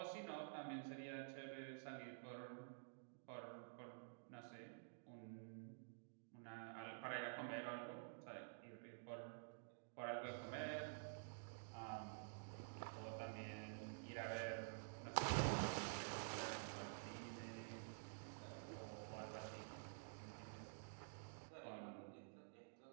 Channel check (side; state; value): left; silent; digital silence